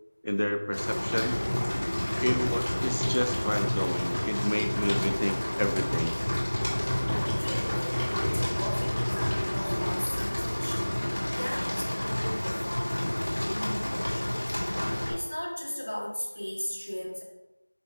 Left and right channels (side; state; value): both; inverted; correlation -1.00